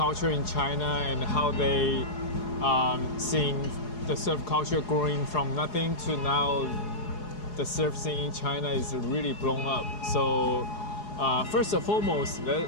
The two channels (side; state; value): right; late; 4.8 ms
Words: in China and how they seeing the surf culture growing from nothing to now the surf scene in China is really blown up. So first and foremost,